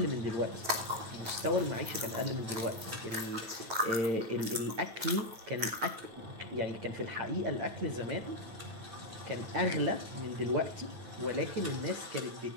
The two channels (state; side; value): late; left; 9.3 ms